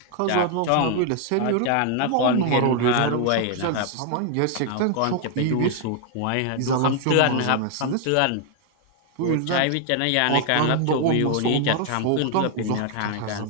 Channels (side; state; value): both; different; correlation 0.00